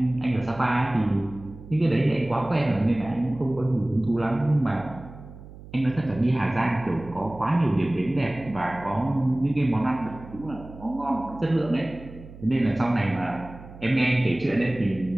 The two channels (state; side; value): noise; right; hum, 17 dB below the sound